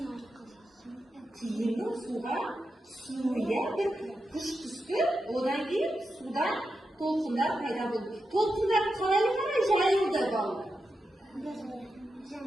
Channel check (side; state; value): both; normal; correlation 0.88